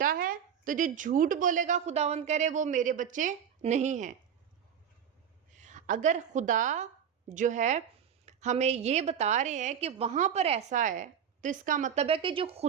ہے تو جو جھوٹ بولے گا خداوند کہہ رہے وہ میرے بچے نہیں ہیں۔ اگر خدا جو ہے ہمیں یہ بتا رہے ہیں کہ وہاں پر ایسا ہے تو اس کا مطلب ہے کہ جو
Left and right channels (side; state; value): left; quieter; 8.4 dB